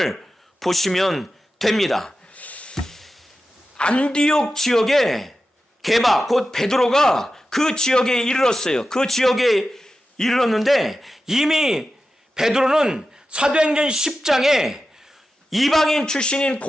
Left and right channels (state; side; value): normal; both; correlation 0.93